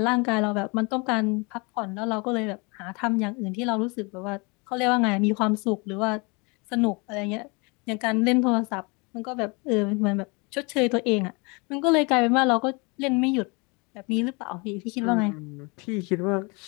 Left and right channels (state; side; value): quieter; right; 29.6 dB